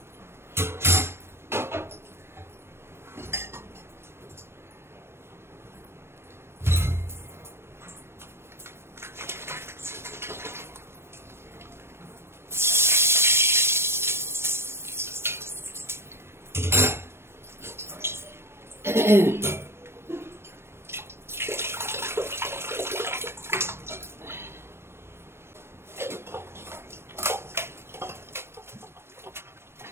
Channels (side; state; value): left; late; 0.12 ms